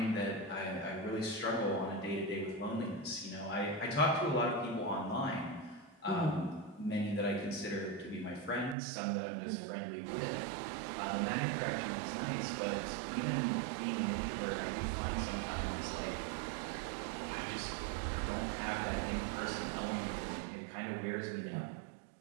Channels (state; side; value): drops out; left; at 8.8 s